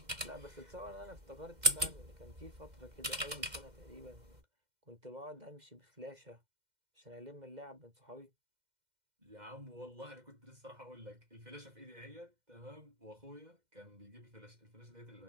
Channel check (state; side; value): late; left; 2.1 ms